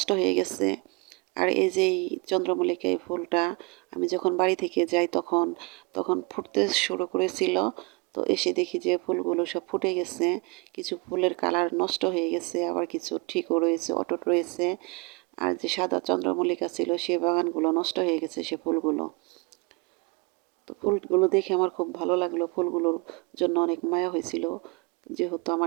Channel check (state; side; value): quieter; left; 29.2 dB